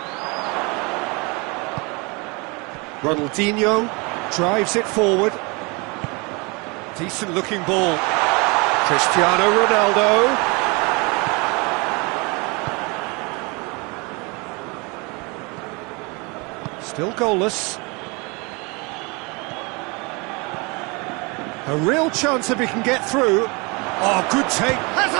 Ronaldinho drives it forward. Decent looking ball. Cristiano Ronaldo. Still goalless. A real chance if he can get through. Oh, good take. Has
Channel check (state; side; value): quieter; left; 28.6 dB